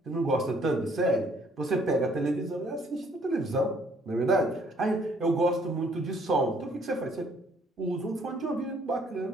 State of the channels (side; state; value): both; normal; correlation 0.63